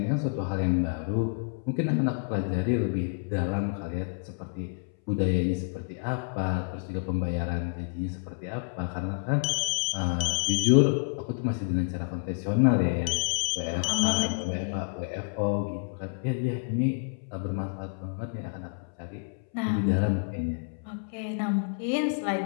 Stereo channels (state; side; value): silent; right; 59 dB below the other